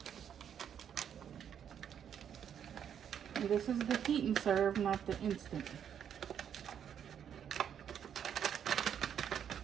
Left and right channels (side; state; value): left; quieter; 8.7 dB